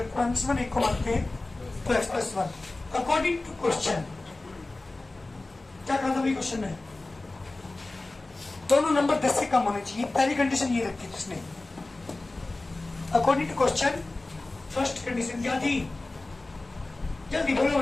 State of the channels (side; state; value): right; quieter; 3.0 dB